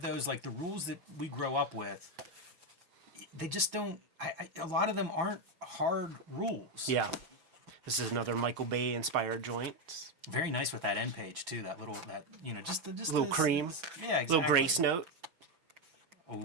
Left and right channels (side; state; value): left; late; 5.9 ms